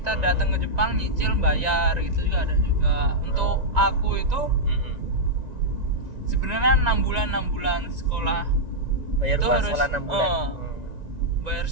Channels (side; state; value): left; late; 1.9 ms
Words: datang ke Jepang nyicil bayar, gitu juga ada juga. Untuk aku itu sebenarnya 6 bulan sekolah. Bayar itu uang harus sekolah 6 bulan. Bayar